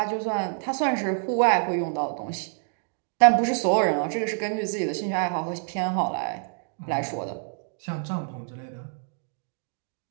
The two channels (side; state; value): left; silent; 58 dB below the other